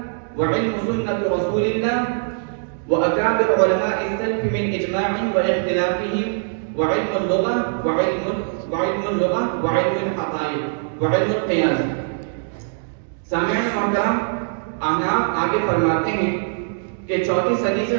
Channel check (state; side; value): silent; left; digital silence